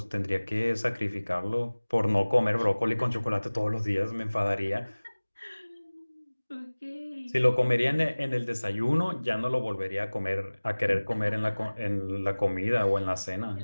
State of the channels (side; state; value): both; inverted; correlation -1.00